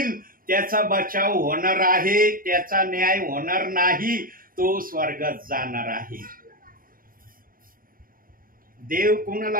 त्याचा बचाव होणार आहे, त्याचा न्याय होणार नाही, तो स्वर्गात जाणार आहे. देव कोणाला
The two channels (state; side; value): late; left; 0.41 ms